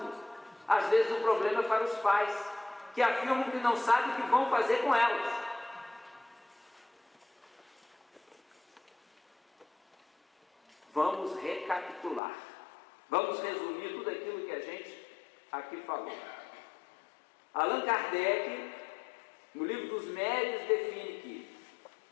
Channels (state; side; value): drops out; right; at 12.2 s